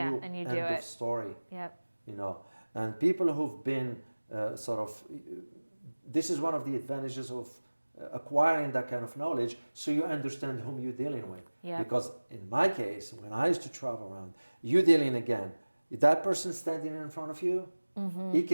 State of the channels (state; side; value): inverted; both; correlation -1.00